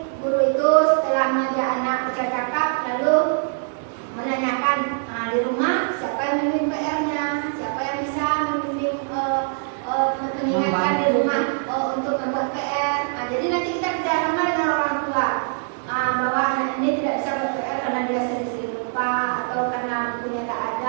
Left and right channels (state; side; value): silent; left; 61 dB below the other